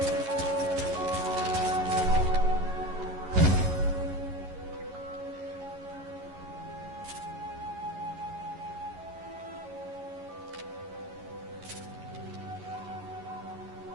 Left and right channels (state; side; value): late; left; 11 ms